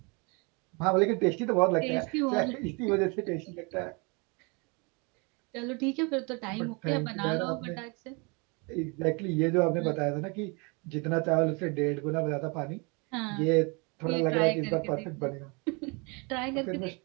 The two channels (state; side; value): quieter; left; 30.9 dB